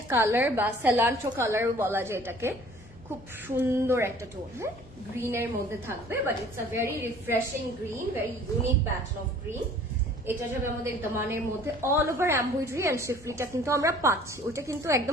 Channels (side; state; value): both; normal; correlation 0.52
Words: কালার, বা সেলান্ট্রো কালার বলা যায় এটাকে। খুব সুন্দর একটা টোন, হ্যাঁ, গ্রিনের মধ্যে থাকবে, but it's a very refreshing green, very unique pattern of green. এটা যাবে আমাদের দামানের মধ্যে, অল ওভার এমব্রয়ডারি এন্ড শিফলিটা কিন্তু আমরা পাচ্ছি, ওইটা কিন্তু